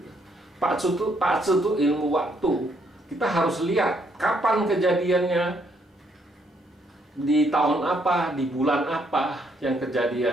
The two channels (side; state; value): both; normal; correlation 0.71